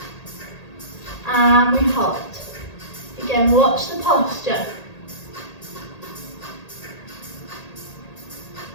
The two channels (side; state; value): right; late; 1.8 ms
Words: and we hold. Again, watch the posture.